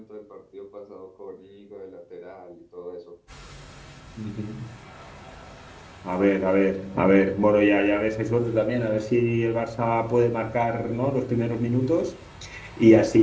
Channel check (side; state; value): both; identical; correlation 1.00